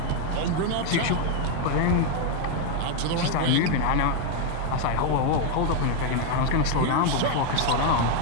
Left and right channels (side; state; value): both; different; correlation 0.01